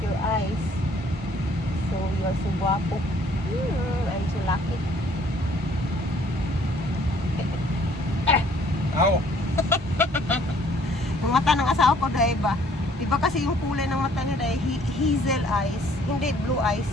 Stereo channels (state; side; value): normal; both; correlation 0.60